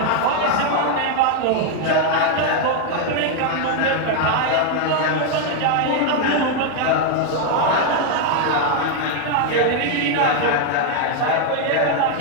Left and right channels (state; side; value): different; both; correlation 0.00